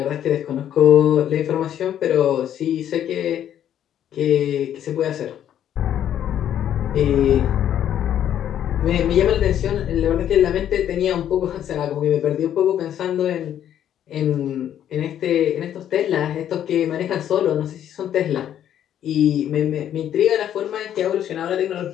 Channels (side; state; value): right; quieter; 10.4 dB